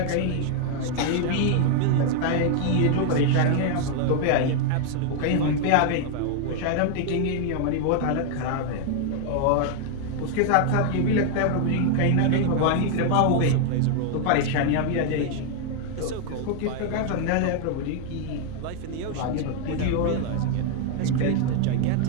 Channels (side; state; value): both; different; correlation 0.00